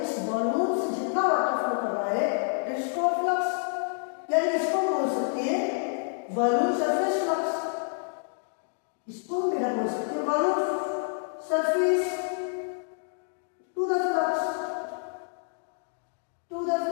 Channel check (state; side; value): silent; right; 59 dB below the other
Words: इस वॉल्यूम से जितना वाटर फ्लो कर रहा है, दैट इज कॉल्ड फ्लक्स. यानी इसको बोल सकते हैं वॉल्यूम सरफेस फ्लक्स. इसको मेरा बोल सकते हैं volume surface to the flux.